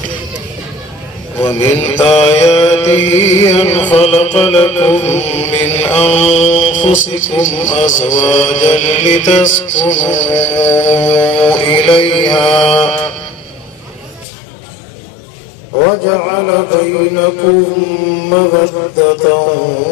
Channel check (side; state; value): right; drops out; at 14.2 s